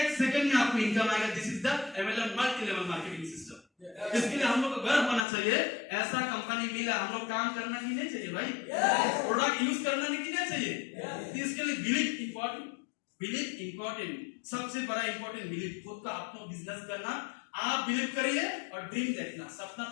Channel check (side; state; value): right; drops out; at 5.2 s